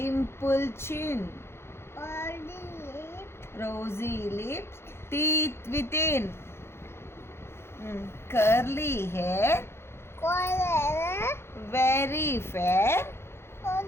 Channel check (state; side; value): late; right; 0.12 ms